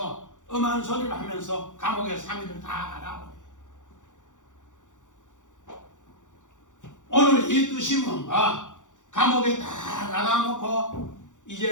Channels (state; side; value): late; right; 0.86 ms